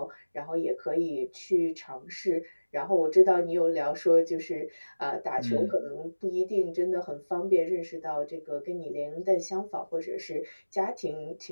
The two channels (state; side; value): inverted; both; correlation -1.00